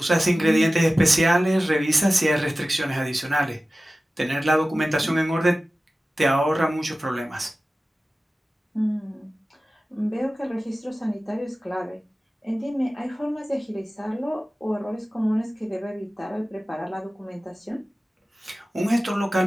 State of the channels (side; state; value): both; normal; correlation 0.96